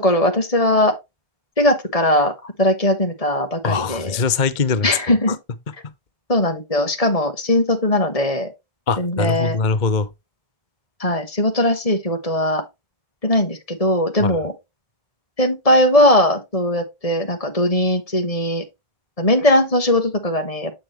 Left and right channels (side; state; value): right; late; 2.1 ms